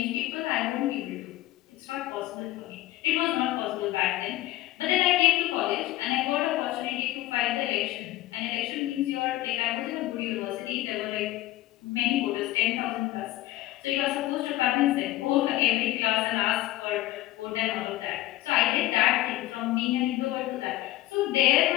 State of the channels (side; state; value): right; quieter; 16.2 dB